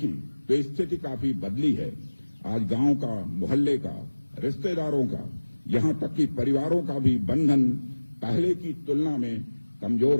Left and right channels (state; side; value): inverted; both; correlation -1.00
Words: तो स्थिति काफी बदली है। आज गांव का, मोहल्ले का, रिश्तेदारों का, यहां तक कि परिवारों का भी बंधन पहले की तुलना में कमजोर